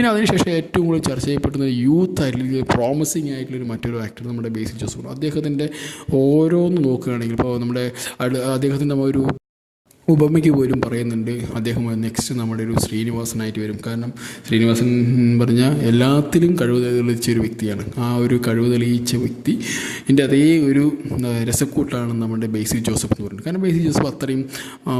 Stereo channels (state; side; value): identical; both; correlation 1.00